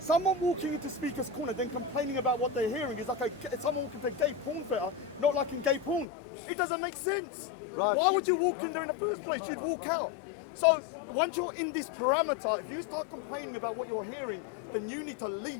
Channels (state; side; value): drops out; right; at 6.1 s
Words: walking into Speaker's Corner then complaining about what they're hearing is like someone walking to a gay porn theatre, not liking gay porn. It doesn't make sense. Right. Why would you walk in there in the first place? You'd walk out. So once you're in this parameter, if you start complaining about what you're hearing, then you need to